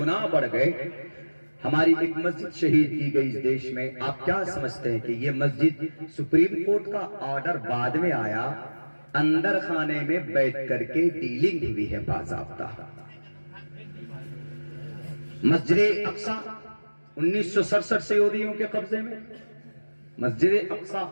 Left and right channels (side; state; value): both; inverted; correlation -1.00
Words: بڑھ گئے، ہماری ایک مسجد شہید کی گئی اس دیش میں۔ آپ کیا سمجھتے ہیں کہ یہ مسجد سپریم کورٹ کا آرڈر بعد میں آیا، اندر خانے میں بیٹھ کر کے ڈیلنگ ہوئی ہے باضابطہ۔ مسجد اقصی 1967 سے یہودیوں کے قبضے میں، مسجد اقصی